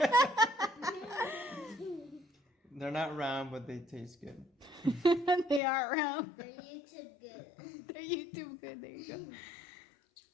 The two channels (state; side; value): drops out; right; at 5.6 s